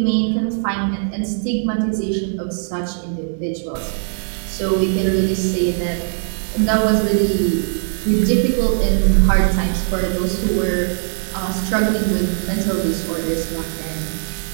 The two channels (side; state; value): left; silent; digital silence